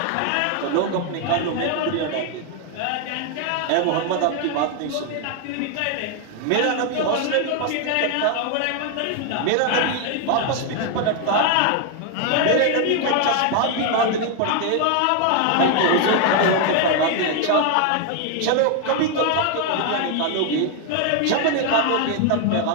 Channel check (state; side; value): different; both; correlation 0.01